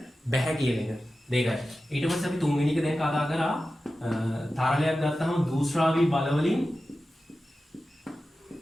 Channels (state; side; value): normal; both; correlation 0.93